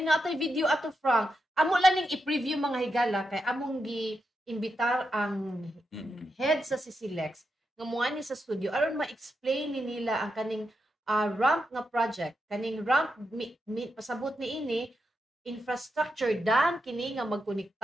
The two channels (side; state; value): both; normal; correlation 0.85